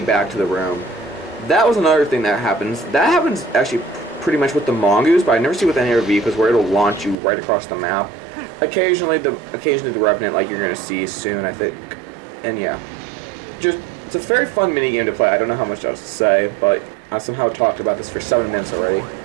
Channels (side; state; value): left; drops out; at 7.2 s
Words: back to the room. That was another thing that happens. That happens actually pretty much with the Mongoose, but I never see it with any other vehicles where it'll launch you right across the map. Occasionally the Revenant, like you're going to see soon, I think. And yeah. It's a very fun minigame to play. I don't know how much else to say, but I somehow talked about this for 7 minutes already.